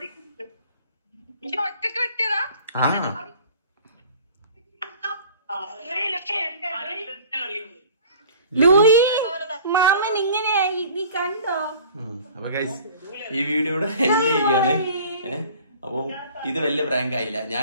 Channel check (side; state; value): both; inverted; correlation -0.47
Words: ലൂയി മാമൻ ഇങ്ങനെയായി, നീ കണ്ടോ? അപ്പൊ ഈ വീഡിയോ ഇവിടെ എൻഡ് ചെയ്യുകയാണ്. അപ്പൊ ഇത് വലിയ പ്രാങ്ക് ആയില്ല. ഞാൻ